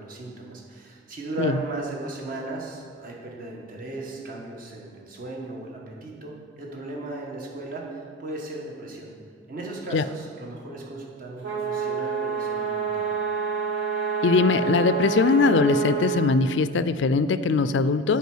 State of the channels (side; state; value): both; normal; correlation 0.25